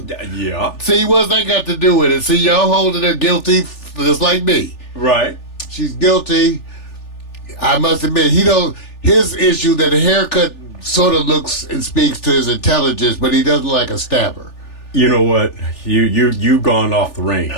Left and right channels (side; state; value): right; late; 3.4 ms